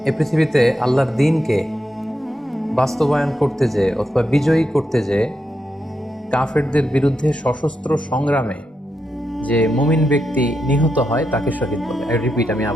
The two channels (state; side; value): normal; both; correlation 0.85